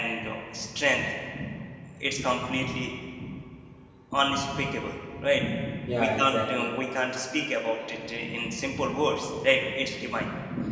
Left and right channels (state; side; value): identical; both; correlation 1.00